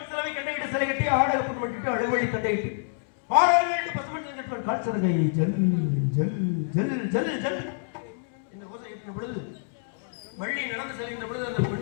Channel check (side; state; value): right; silent; digital silence